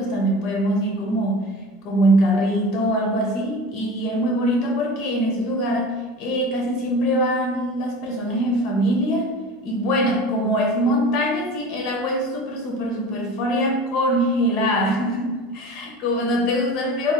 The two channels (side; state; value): both; normal; correlation 0.36